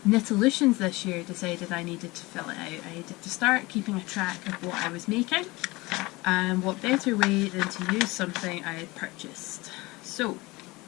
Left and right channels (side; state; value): right; quieter; 22.2 dB